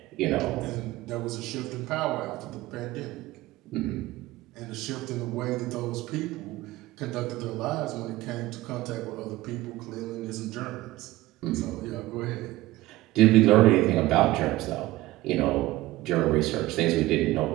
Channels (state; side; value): quieter; left; 17.5 dB